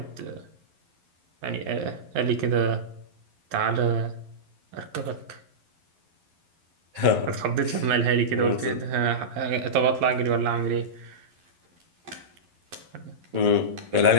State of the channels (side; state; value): left; late; 11 ms